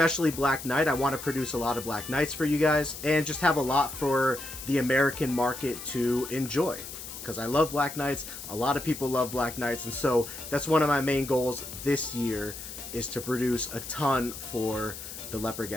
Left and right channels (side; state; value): left; noise; hiss, 11 dB below the sound